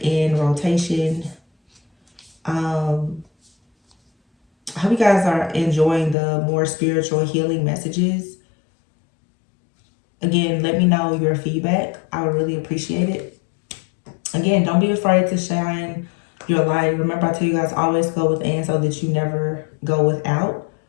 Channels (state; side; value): drops out; right; at 6.2 s